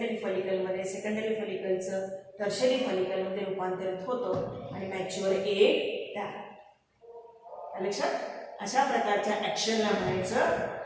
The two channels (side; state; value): both; identical; correlation 1.00